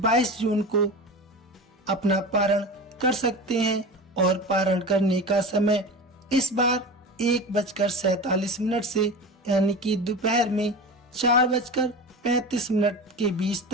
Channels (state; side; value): normal; both; correlation 0.30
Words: जून को अपना पारण कर सकते हैं और पारण करने का समय इस बार 1:47 से यानी कि दोपहर में 4:35 के बीच